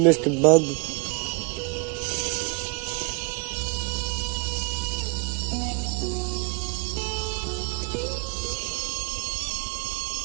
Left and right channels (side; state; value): left; quieter; 30.2 dB